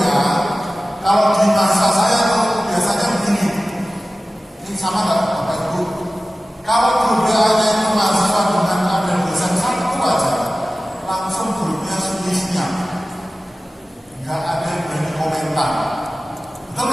kalau di masa saya tuh biasanya begini. Ini sama nggak Bapak Ibu? Kalau grup WA-nya itu mahasiswa dengan ada dosen satu aja, langsung grupnya sunyi-sunyi. Nggak ada yang berani komentar. Betul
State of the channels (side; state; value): both; normal; correlation 0.96